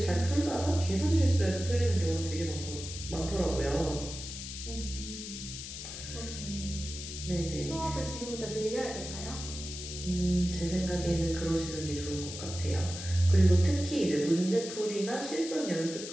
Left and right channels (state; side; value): noise; left; hiss, 9 dB below the sound